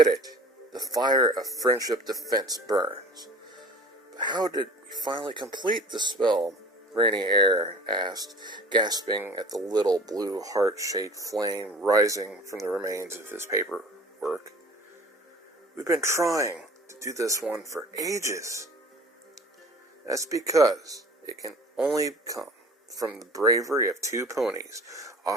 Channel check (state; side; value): normal; both; correlation 0.44